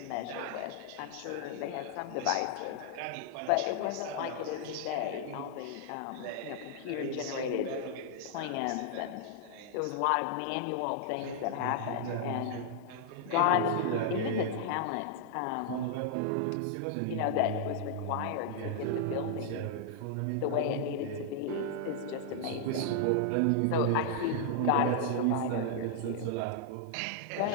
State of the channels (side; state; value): both; different; correlation -0.01